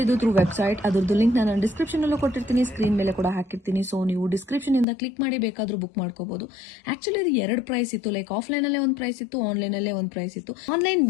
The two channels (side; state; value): right; drops out; at 4.9 s